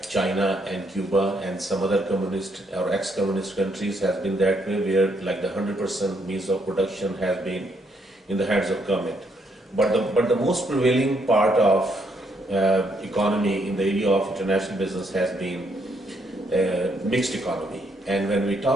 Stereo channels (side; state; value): both; normal; correlation 0.73